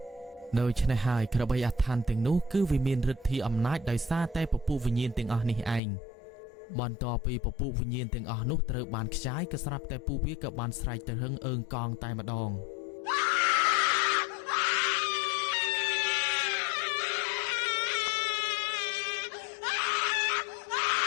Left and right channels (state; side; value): drops out; right; at 5.8 s